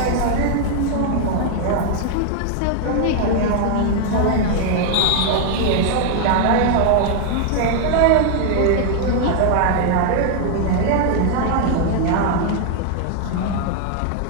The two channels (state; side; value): different; both; correlation 0.00